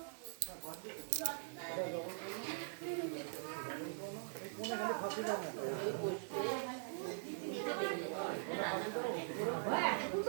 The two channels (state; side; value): silent; left; digital silence